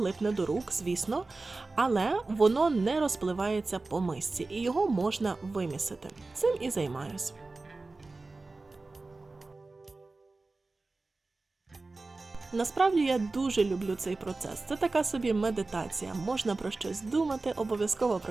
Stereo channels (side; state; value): left; quieter; 3.5 dB